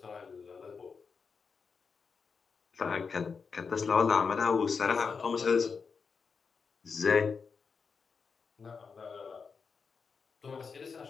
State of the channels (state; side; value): quieter; right; 5.4 dB